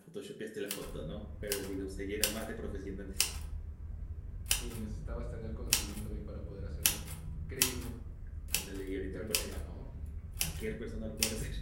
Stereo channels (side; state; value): both; identical; correlation 1.00